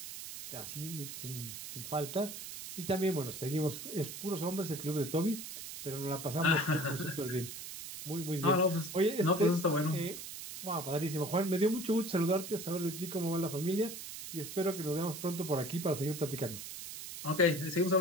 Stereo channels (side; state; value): right; noise; hiss, 9 dB below the sound